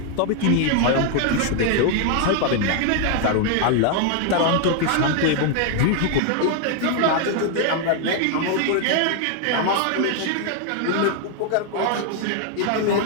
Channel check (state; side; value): different; both; correlation 0.00